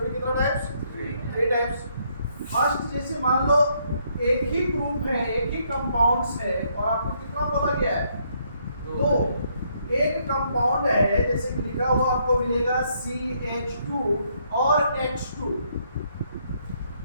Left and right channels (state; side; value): inverted; both; correlation -0.72